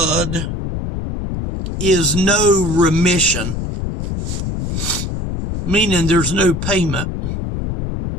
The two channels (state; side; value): noise; left; rumble, 3 dB below the sound